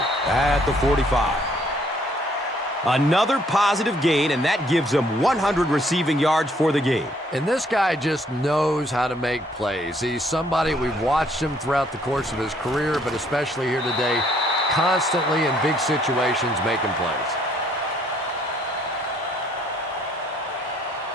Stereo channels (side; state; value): both; normal; correlation 0.65